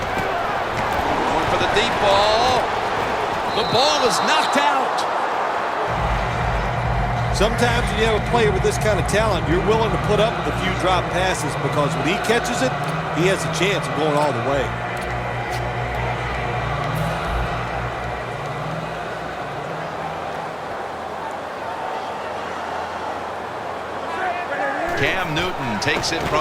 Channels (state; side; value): identical; both; correlation 1.00